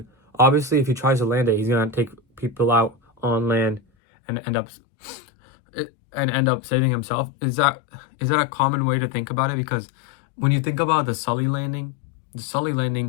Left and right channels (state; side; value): drops out; right; at 3.8 s